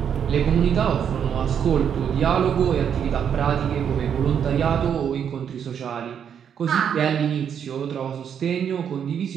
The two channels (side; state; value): left; quieter; 8.2 dB